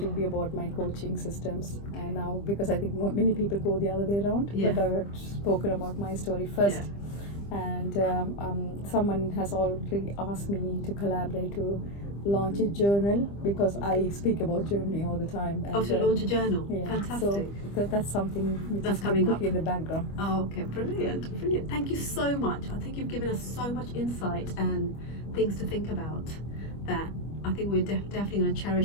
will be about my coaching systems, and now, because I think many people go the other way around, Yeah. but I've spoken about my story first. And someone has already asked me to collaborate to launch a journal, because I speak about journaling all the time. And, To launch a journal. yeah, Fantastic. So that's something which That's is coming up. cooking in the background. Oh, okay, brilliant, brilliant. Thank you so much. I think you've given us so much insight and things to think about, that I think we're definitely going to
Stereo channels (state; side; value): late; right; 25 ms